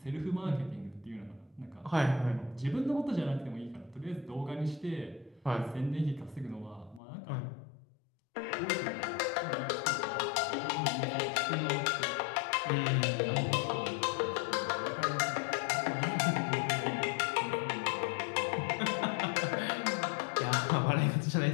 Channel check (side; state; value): right; drops out; at 7.0 s